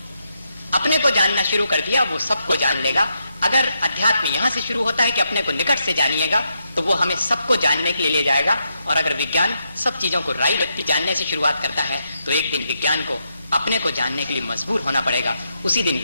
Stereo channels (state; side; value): inverted; both; correlation -0.82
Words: अपने को जानना शुरू कर दिया, वो सबको जान लेगा। अगर अध्यात्म यहां से शुरू होता है कि अपने को निकट से जानिएगा, तो वो हमें सबको जानने के लिए ले जाएगा। और अगर विज्ञान सब चीजों को राई व्यक्ति जानने से शुरुआत करता है, तो एक दिन विज्ञान को अपने को जानने के लिए मजबूर होना पड़ेगा। उसी दिन